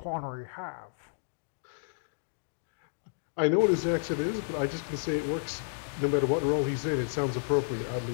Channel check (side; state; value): right; silent; digital silence